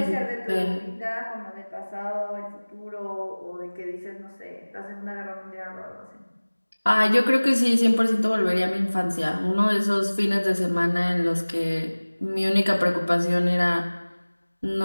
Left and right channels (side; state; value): both; inverted; correlation -1.00